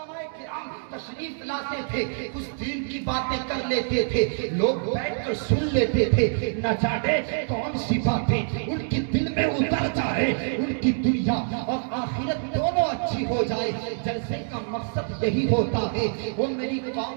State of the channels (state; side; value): silent; left; digital silence